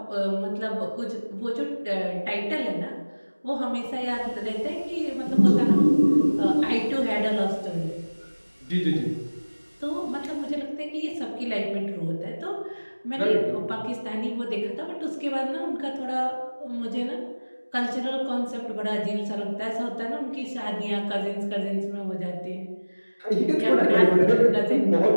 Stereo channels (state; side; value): inverted; both; correlation -1.00